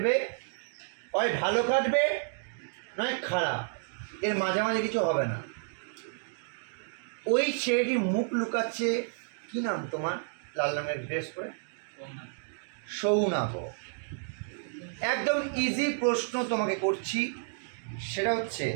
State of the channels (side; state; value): left; silent; digital silence